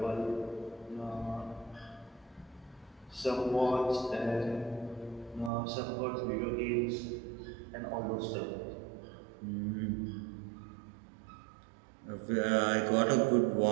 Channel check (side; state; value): left; drops out; at 5.5 s